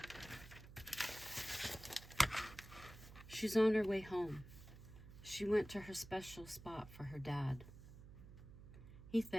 She's on her way home. She went to her special spot for her dad. He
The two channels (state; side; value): noise; right; hum, 16 dB below the sound